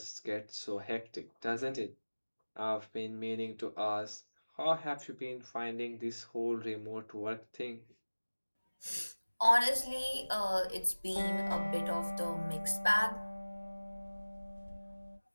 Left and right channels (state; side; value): inverted; both; correlation -1.00